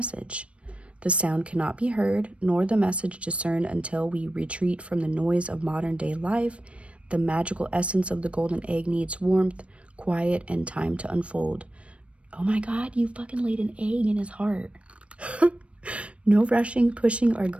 The sound cannot be heard, nor the message discerned until we retreat from the noise of modern day life. The magical essence of the golden egg needs warmth, quiet, and time to unfold. Oh my God, you fucking laid an egg in his heart. No rushing, pushing, or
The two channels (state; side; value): late; left; 0.061 ms